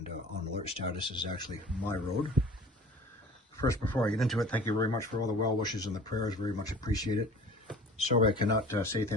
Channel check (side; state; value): both; normal; correlation 0.44